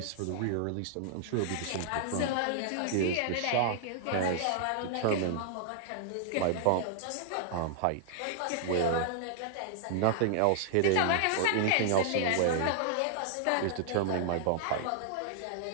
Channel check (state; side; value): different; both; correlation -0.01